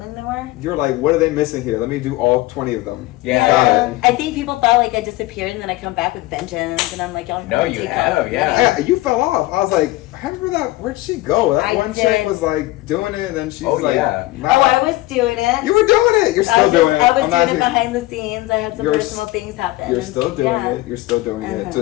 they were. You're like, what are they missing here? Let me do all 20 of them. Yeah. Got it. I think people thought like I disappeared and then I come back with vengeance and I'm like, y'all No, wanna you take have, off. yeah. You fell off. I was like, I remember that. Where'd she go? That I one did. chick was like doing it, and then she's Oh, like, yeah. nah. Oh, I was doing it. You were doing it. You're still doing it. I was I'm doing it not- behind the scenes. I had some You're personal things happen. You're and- still doing yeah. it. You're still doing it. Uh-huh.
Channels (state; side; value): quieter; right; 18.6 dB